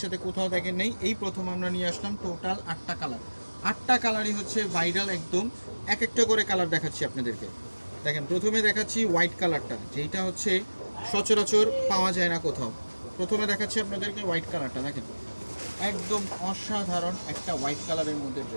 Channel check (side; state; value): both; inverted; correlation -1.00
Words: কোথাও দেখেন নেই, এই প্রথম আমরা নিয়ে আসলাম টোটাল 8টা কালার। 8টা কালারই হচ্ছে ভাইরাল একদম। এক একটা করে কালার দেখাচ্ছি আপনাদেরকে। দেখেন, প্রথমে দেখাচ্ছি হোয়াইট কালারটা, যেটা হচ্ছে সচরাচর পাওয়া যায় না কোথাও। প্রথমে দেখাচ্ছি আপনাদেরকে হোয়াইট কালারটা। দেখেন, একদম অসাধারণ একটা হোয়াইট কালারের মধ্যে